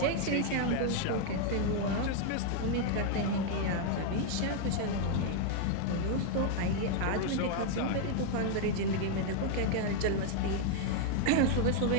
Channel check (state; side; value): different; both; correlation 0.00